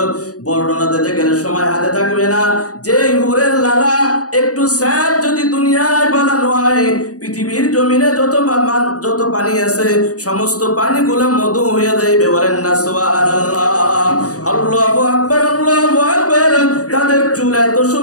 বর্ণনা দিতে গেলে সময় হাতে থাকবে না। যে হুরের লালা একটু স্যাপ যদি দুনিয়ায় বানানো হয়, পৃথিবীর জমিনে যত পানি আছে সমস্ত পানিগুলো মধু হয়ে যাইবে। বলেন না সুবহানাল্লাহ। আল্লাহু আকবার, আল্লাহু আকবার। তাদের চুল এত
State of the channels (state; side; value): late; right; 0.67 ms